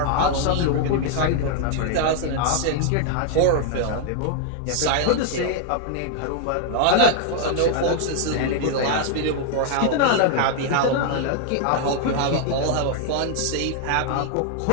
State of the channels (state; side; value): different; both; correlation 0.00